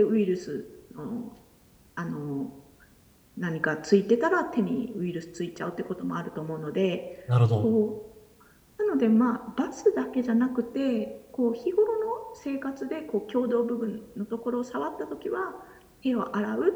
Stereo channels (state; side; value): identical; both; correlation 1.00